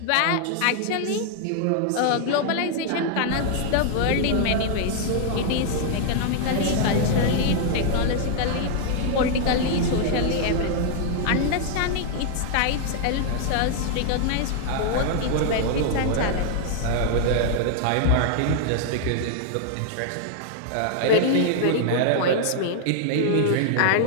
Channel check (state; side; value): different; both; correlation 0.00